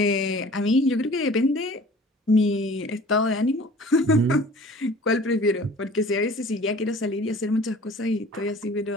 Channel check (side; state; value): both; normal; correlation 0.47